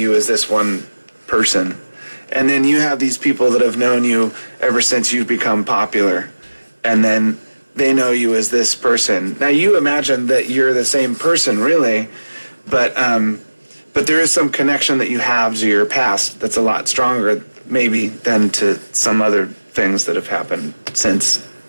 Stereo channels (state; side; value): inverted; both; correlation -1.00